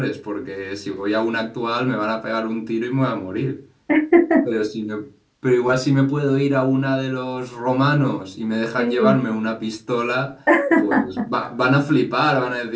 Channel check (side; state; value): both; identical; correlation 1.00